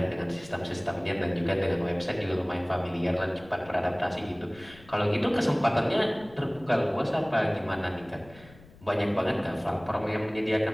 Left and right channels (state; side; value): noise; left; rumble, 23 dB below the sound